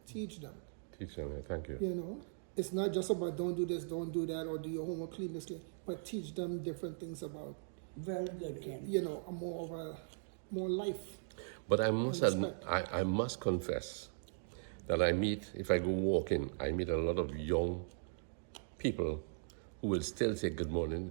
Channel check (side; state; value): left; silent; digital silence